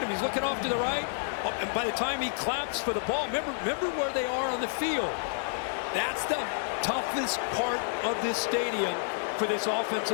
him, he's looking off to the right. Oh, and by the time he claps for the ball, remember where they are on the field. That's the toughest part of this stadium for this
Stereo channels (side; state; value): right; silent; digital silence